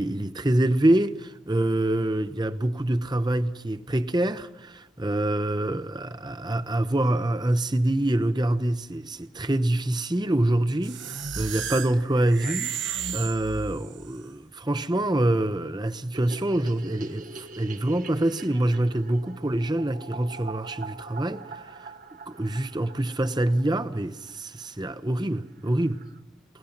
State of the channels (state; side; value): normal; both; correlation 0.89